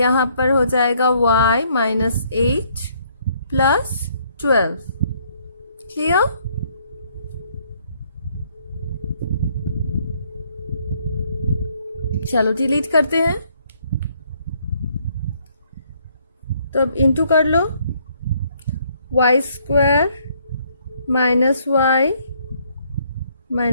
पर हो जाएगा y माइनस 8 प्लस 12। क्लियर? चलो डिलीट करते हैं। तो अब इंटू कर लो, y² minus y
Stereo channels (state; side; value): inverted; both; correlation -0.67